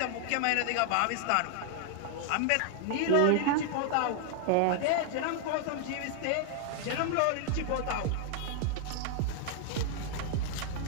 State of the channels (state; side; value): different; both; correlation 0.00